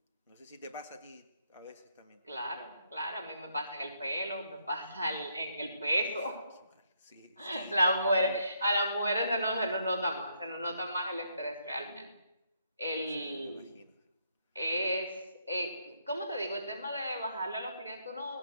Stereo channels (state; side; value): inverted; both; correlation -0.74